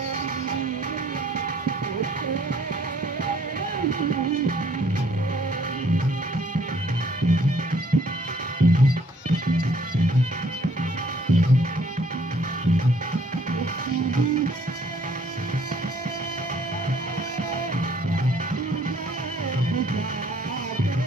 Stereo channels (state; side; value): normal; both; correlation 0.62